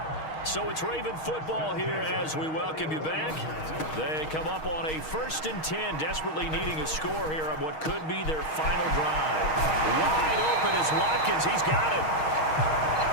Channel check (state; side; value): late; right; 6.4 ms